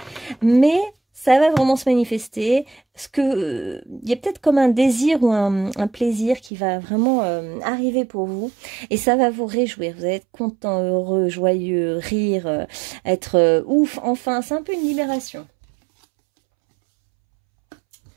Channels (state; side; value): drops out; left; at 6.5 s